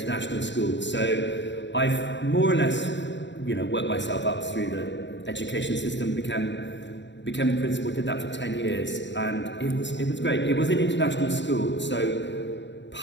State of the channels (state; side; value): late; right; 0.52 ms